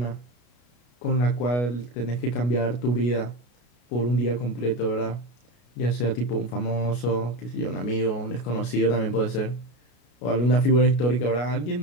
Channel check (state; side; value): late; right; 33 ms